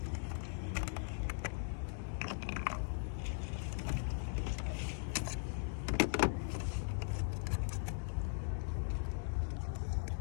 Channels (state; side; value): silent; right; digital silence